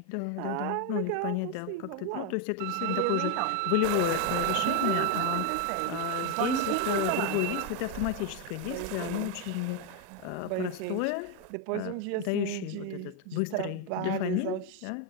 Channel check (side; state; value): both; different; correlation 0.01